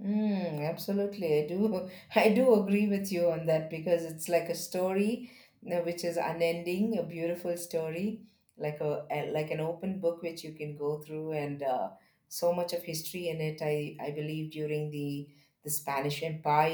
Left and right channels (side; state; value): both; identical; correlation 1.00